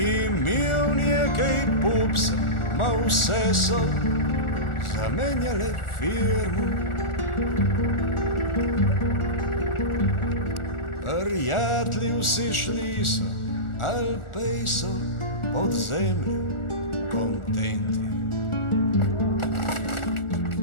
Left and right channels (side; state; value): right; late; 1.4 ms